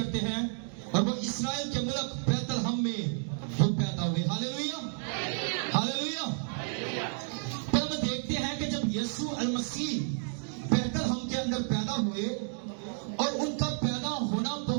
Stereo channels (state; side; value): silent; left; 57 dB below the other